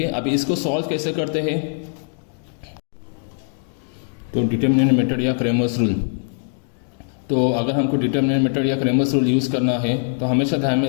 है, अभी इसको सॉल्व कैसे करते हैं, तो डिटर्मिनेंट मेथड या क्रेमर्स रूल. तो अगर हमको डिटर्मिनेंट मेथड या क्रेमर्स रूल यूज़ करना है तो हमेशा ध्यान में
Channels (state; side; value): silent; right; digital silence